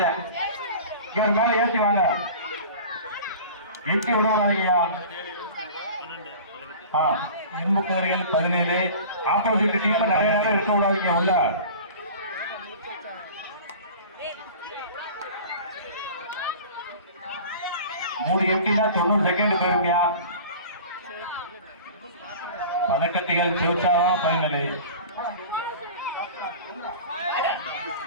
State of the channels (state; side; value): inverted; both; correlation -0.39